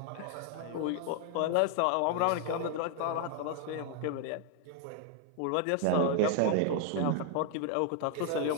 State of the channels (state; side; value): different; both; correlation 0.00